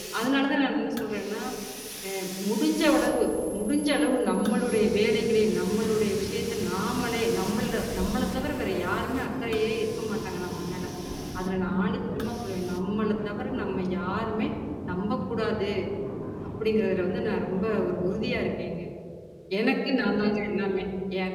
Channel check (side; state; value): both; identical; correlation 1.00